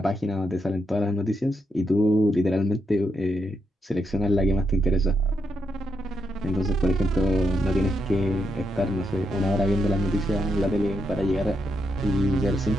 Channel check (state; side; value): normal; both; correlation 0.81